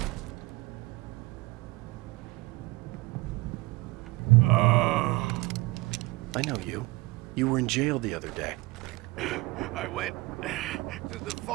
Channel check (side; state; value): left; quieter; 21.8 dB